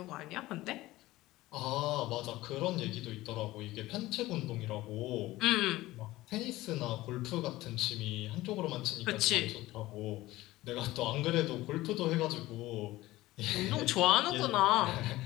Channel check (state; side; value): quieter; right; 17.7 dB